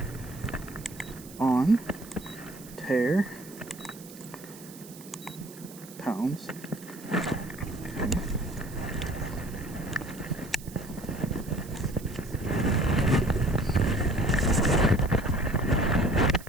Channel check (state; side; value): noise; right; hiss, 18 dB below the sound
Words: On. Tear. Pounds.